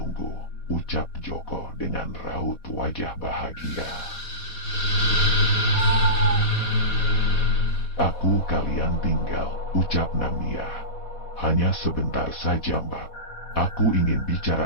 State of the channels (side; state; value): right; late; 4.1 ms